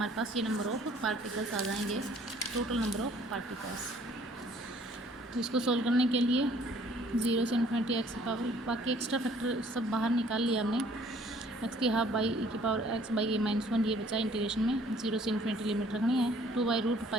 पास ये नंबर ऑफ पार्टिकल्स आ जाएंगे, टोटल नंबर ऑफ पार्टिकल्स। तो इसको सोल्व करने के लिए 0 से इन्फिनिटी x की पावर, बाकी एक्स्ट्रा फैक्टर सब बाहर निकाल लिया हमने, x की हाफ बाई e की पावर x/a-1 ये बचा इंटीग्रेशन में। 0 से इन्फिनिटी लिमिट रखनी है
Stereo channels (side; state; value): both; normal; correlation 0.58